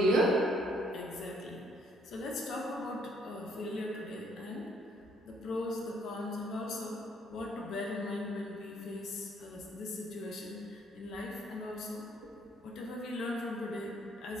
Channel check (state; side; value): normal; both; correlation 0.66